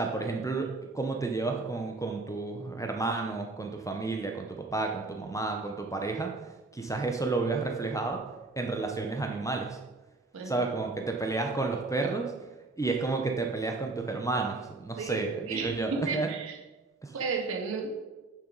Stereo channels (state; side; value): quieter; left; 3.2 dB